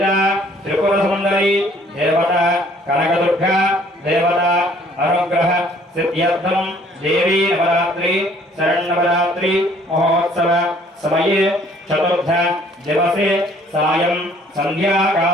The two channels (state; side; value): normal; both; correlation 0.59